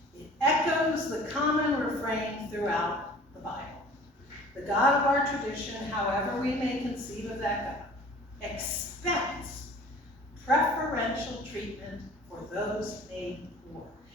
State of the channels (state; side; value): normal; both; correlation 0.47